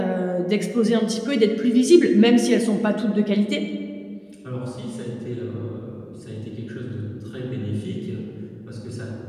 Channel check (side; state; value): both; identical; correlation 1.00